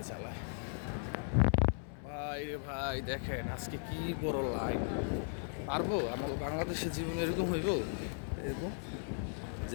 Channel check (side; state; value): right; silent; 53 dB below the other